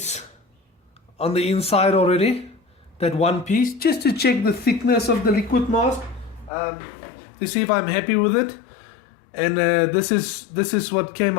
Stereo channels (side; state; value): right; drops out; at 6.5 s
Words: on the inside already, that one piece, just to check the thickness of the liquid mask, to see if I'm happy with it. And this is what came